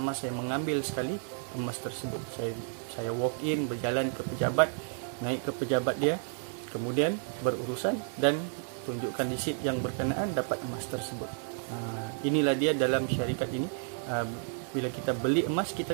saya mengambil sekali emas tersebut. Saya walk in, berjalan ke pejabat, naik ke pejabat dia, kemudian berurusan dan tunjukkan resit yang berkenaan, dapat emas tersebut. Inilah dia dalam syarikat ini. Bila kita beli emas,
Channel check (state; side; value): silent; left; 57 dB below the other